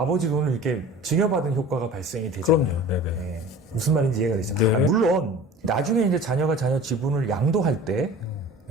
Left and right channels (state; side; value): normal; both; correlation 0.41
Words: 돈을 이렇게 증여받은 효과가 발생이 되잖아요. 그럼요. 네네. 예, 무슨 말인지 이해가 되죠. 네. 물론 나중에 이제 자녀가 자녀 지분을 양도할 때